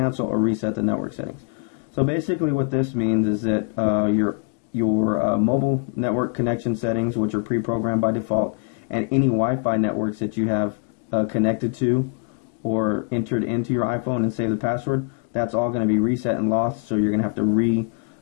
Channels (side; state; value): right; quieter; 36.5 dB